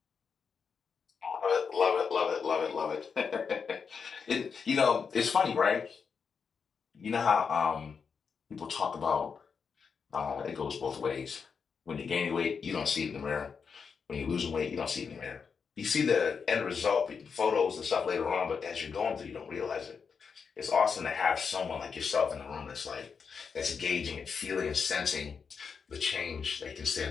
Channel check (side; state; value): right; quieter; 5.9 dB